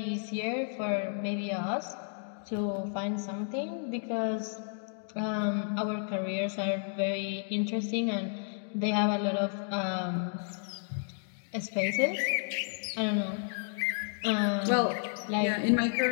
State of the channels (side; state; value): right; silent; digital silence